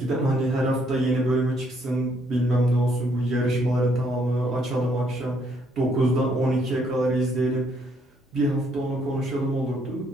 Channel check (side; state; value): both; normal; correlation 0.70